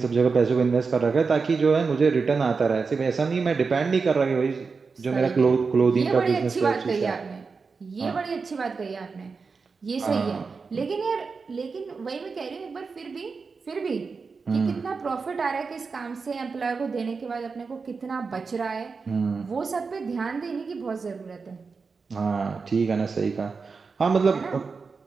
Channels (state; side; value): quieter; left; 4.8 dB